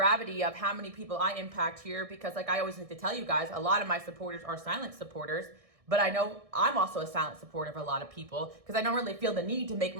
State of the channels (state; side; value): late; left; 1.6 ms